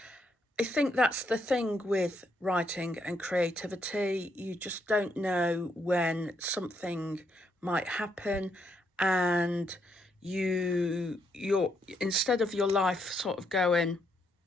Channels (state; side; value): normal; both; correlation 0.76